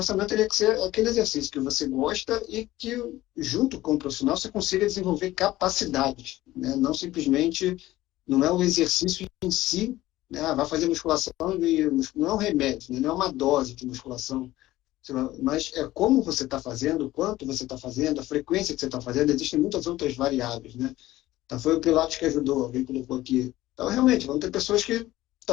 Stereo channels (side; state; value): right; quieter; 16.3 dB